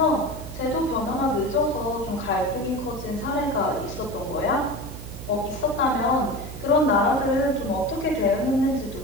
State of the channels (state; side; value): noise; right; hum, 11 dB below the sound